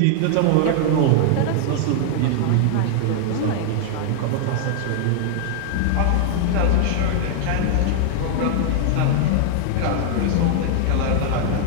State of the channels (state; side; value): different; both; correlation 0.00